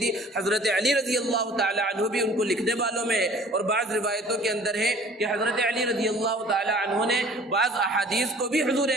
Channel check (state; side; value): normal; both; correlation 0.50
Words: حضرت علی رضی اللہ تعالی عنہ بھی ان کو لکھنے والوں میں ہے، اور بعض روایتوں کے اندر ہے کہ حضرت علی رضی اللہ تعالی عنہ نے بعض احادیث کو بھی حضور